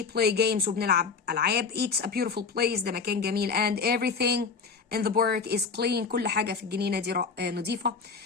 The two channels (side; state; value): right; quieter; 5.2 dB